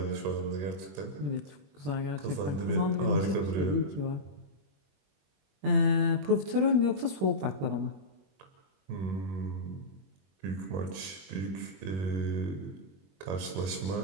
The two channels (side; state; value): left; late; 21 ms